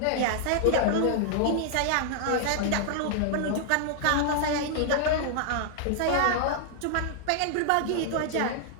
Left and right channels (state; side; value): different; both; correlation -0.01